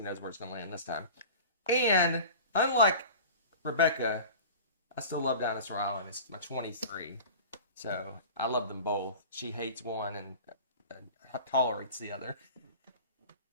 knows where it's going to land this time. And unlike Rebecca, I still love Dinosaur Island. It's my 23. So I love them both. She hates one and tolerates the other.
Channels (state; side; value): inverted; both; correlation -0.37